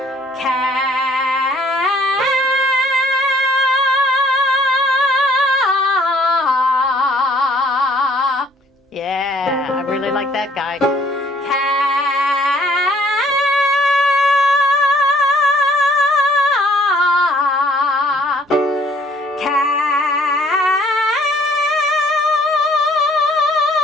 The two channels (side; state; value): both; normal; correlation 0.60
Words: Yeah, I really like that guy.